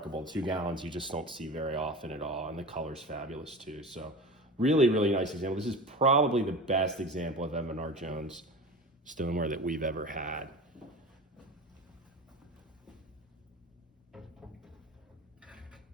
2 gallons you just don't see very often at all, and the color's fabulous too. So really, really nice example. This is probably the best example of Evan R. Jones stoneware that we've ever had.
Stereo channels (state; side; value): normal; both; correlation 0.32